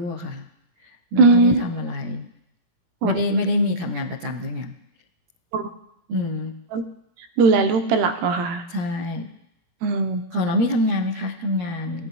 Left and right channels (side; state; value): left; late; 17 ms